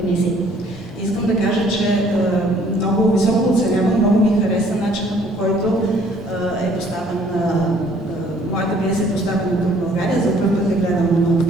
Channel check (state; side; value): normal; both; correlation 0.59